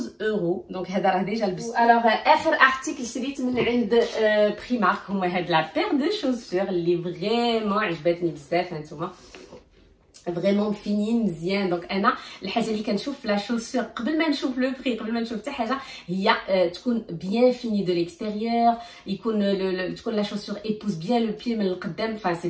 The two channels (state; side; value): identical; both; correlation 1.00